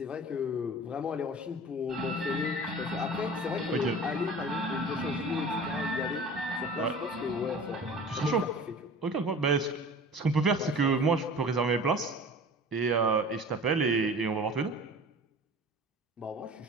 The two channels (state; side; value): normal; both; correlation 0.40